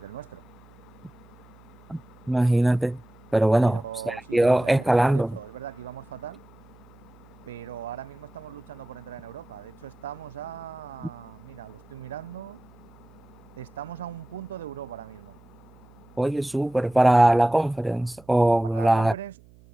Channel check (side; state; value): right; noise; hum, 25 dB below the sound